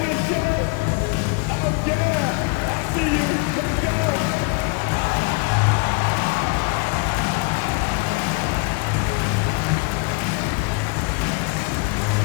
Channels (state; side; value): quieter; right; 27.7 dB